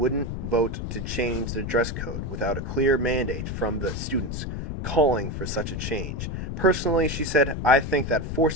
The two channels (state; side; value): noise; left; rumble, 4 dB below the sound